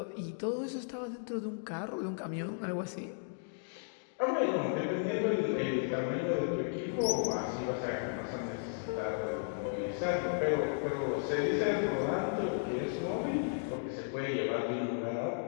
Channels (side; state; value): right; silent; digital silence